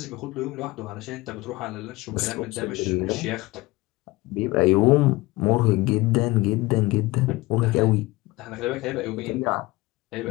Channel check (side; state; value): right; quieter; 20.7 dB